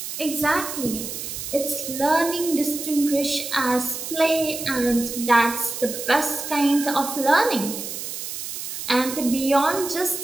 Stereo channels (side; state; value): right; noise; hiss, 7 dB below the sound